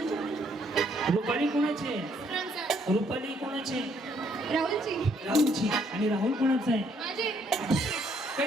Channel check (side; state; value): both; normal; correlation 0.68